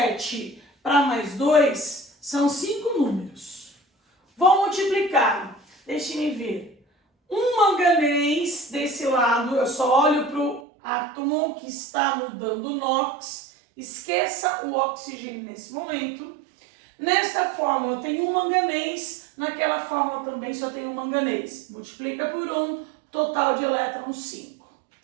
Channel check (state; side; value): drops out; left; at 10.6 s